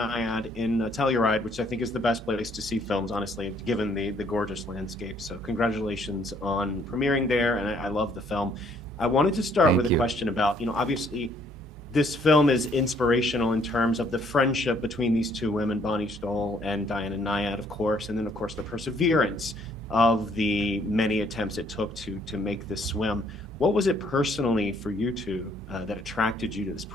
in Telluride, which I think is the best place to see films, honestly, given the gorgeous landscape. So congratulations on premiering there, and I love the film. I wanted to start with Thank a you. question about, obviously this film is inspirational in terms of the friendship between these two women, Bonnie Stoll and Diana Nyad, of course, and then of course the perseverance of the many attempts it took to make this swim. What was it personally for you two that attracted you to this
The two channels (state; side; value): normal; both; correlation 0.65